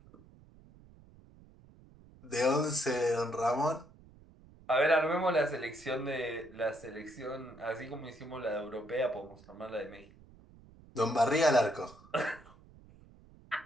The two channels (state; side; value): noise; right; rumble, 24 dB below the sound